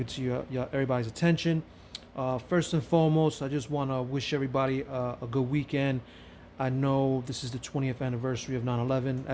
to everybody's attention. First and foremost, I just want to wish everybody a good weekend. I know this is the 20th anniversary of 9/11.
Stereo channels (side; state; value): both; identical; correlation 1.00